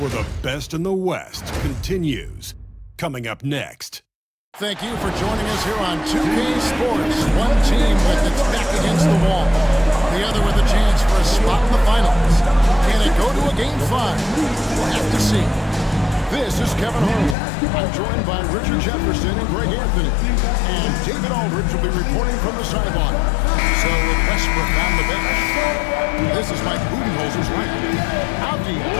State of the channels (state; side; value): drops out; right; at 17.4 s